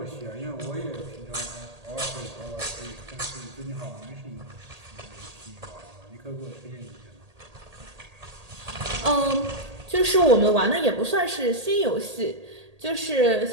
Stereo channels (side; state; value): left; late; 1.8 ms